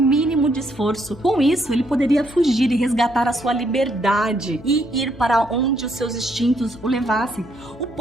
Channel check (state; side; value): noise; left; hum, 21 dB below the sound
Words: de esforço. Com isso, ele poderia fugir e resgatar a sua liberdade e ir para onde os seus instintos o levassem. O